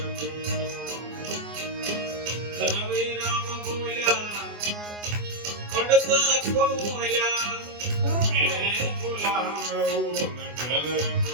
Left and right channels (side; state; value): left; late; 24 ms